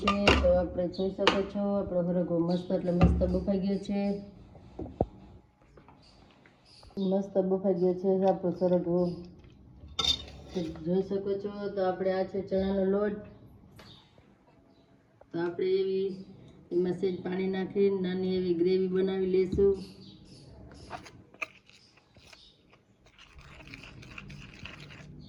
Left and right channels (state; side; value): identical; both; correlation 1.00